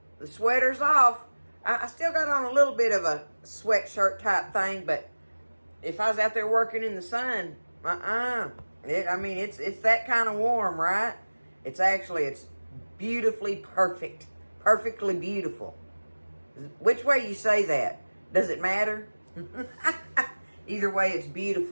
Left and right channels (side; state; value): both; inverted; correlation -1.00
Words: The sweater's off. I still got on a little bit of a sweatshirt type thing, but if I was out there working in the sun, it's that kind of warm, right? It's beautifully perfect. Perfectly beautiful. Which way you say that? Does it matter? Either way, it's